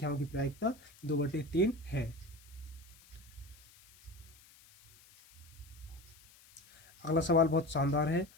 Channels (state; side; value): noise; left; hiss, 25 dB below the sound